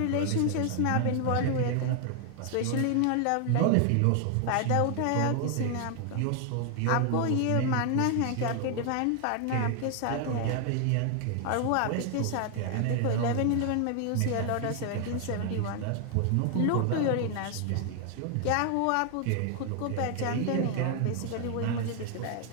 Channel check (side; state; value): both; different; correlation 0.00